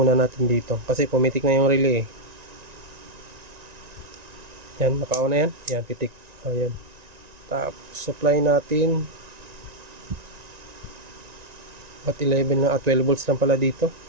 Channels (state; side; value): late; left; 1.9 ms